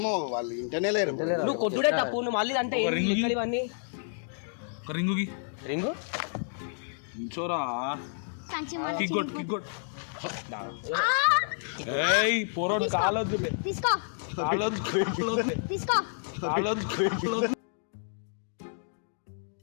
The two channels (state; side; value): silent; right; digital silence